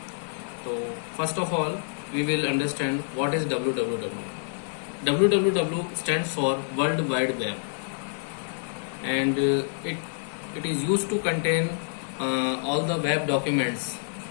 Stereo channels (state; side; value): silent; right; 60 dB below the other